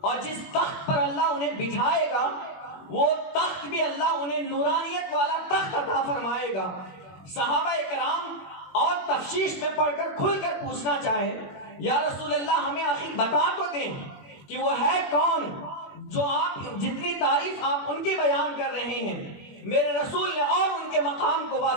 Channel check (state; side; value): late; right; 21 ms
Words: جس تخت پر اللہ انہیں بٹھائے گا وہ تخت بھی اللہ انہیں نورانیت والا تخت عطا فرمائے گا. صحابہ کرام اور تفصیل میں پڑھ کر کھل کر پوچھنا چاہے، یا رسول اللہ ہمیں آخر بتا تو دیں کہ وہ ہے کون جو آپ جتنی تعریف آپ ان کی بیان کر رہے ہیں. میرے رسول نے اور ان کے مقام کو